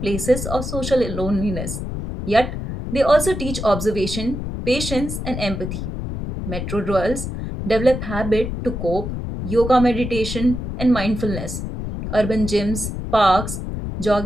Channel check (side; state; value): left; noise; rumble, 5 dB below the sound